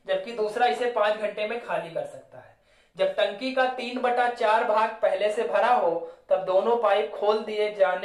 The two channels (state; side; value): identical; both; correlation 1.00